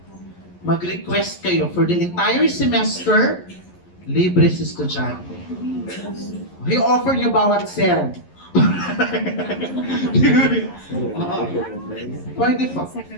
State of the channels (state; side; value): late; right; 11 ms